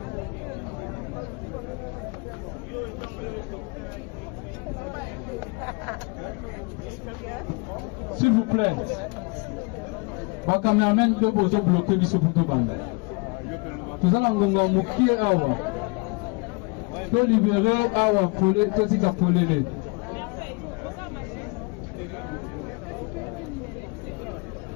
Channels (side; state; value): right; quieter; 30.4 dB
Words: S'il vous plaît, ma caméraman peut vous bloquer sur le bande. Tout ça, on va moquer avant. Peut libérer avant pour les petits capolés.